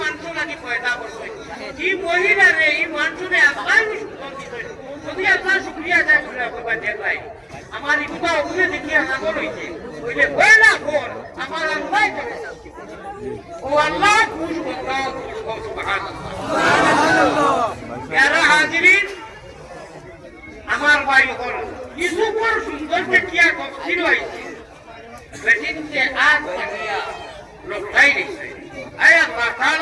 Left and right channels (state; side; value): identical; both; correlation 1.00